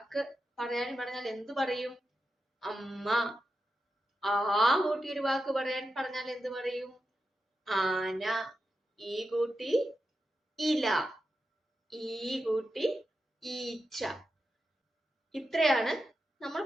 പറഞ്ഞാൽ എന്തു പറയും? അമ്മ. ആ കൂട്ടി ഒരു വാക്ക് പറഞ്ഞാൽ എന്ത് പറയും? ആന. ഈ കൂട്ടി ഇല, ഈ കൂട്ടി ഈച്ച. ഇത്രയാണ് നമ്മൾ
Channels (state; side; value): normal; both; correlation 0.89